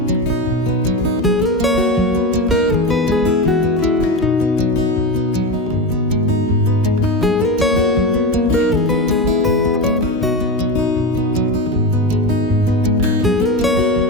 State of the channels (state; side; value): normal; both; correlation 0.20